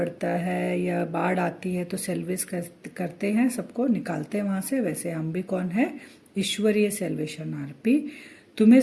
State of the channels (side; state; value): both; identical; correlation 1.00